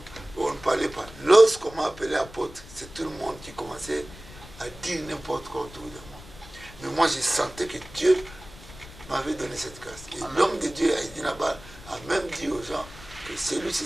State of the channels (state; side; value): noise; left; rumble, 18 dB below the sound